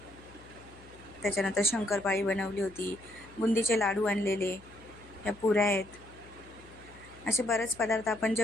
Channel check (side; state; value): left; noise; hum, 21 dB below the sound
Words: त्याच्यानंतर शंकरपाळी बनवली होती, बुंदीचे लाडू आणलेले, ह्या पुऱ्या आहेत. असे बरेच पदार्थ आपण